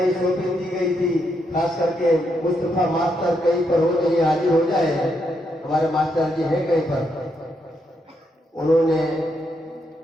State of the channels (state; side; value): normal; both; correlation 0.79